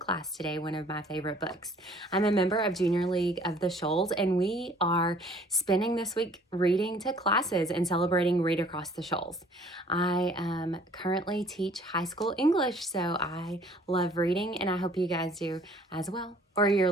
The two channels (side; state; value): both; normal; correlation 0.55